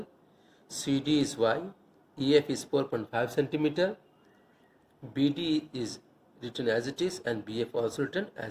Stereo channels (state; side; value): identical; both; correlation 1.00